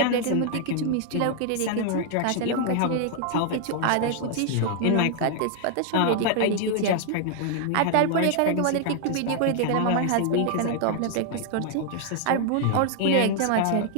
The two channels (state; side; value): different; both; correlation 0.00